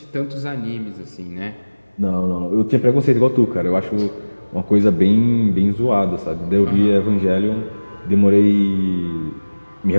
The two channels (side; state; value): both; inverted; correlation -1.00